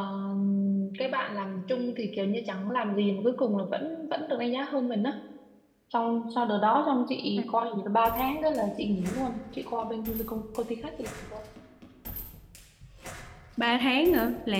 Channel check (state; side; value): identical; both; correlation 1.00